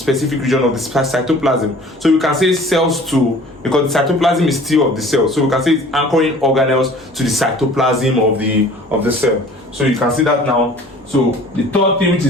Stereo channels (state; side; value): normal; both; correlation 0.48